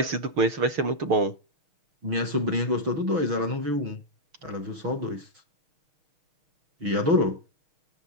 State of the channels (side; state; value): left; late; 6.2 ms